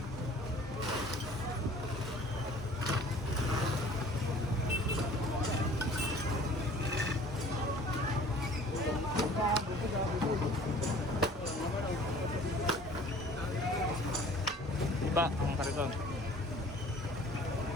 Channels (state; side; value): normal; both; correlation 0.50